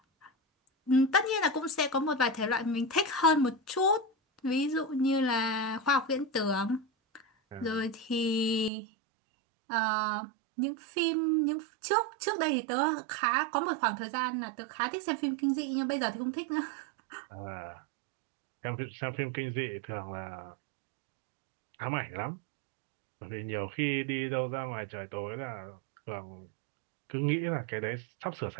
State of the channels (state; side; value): drops out; left; at 8.7 s